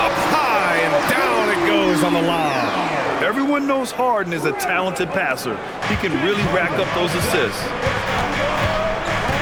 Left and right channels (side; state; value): both; identical; correlation 1.00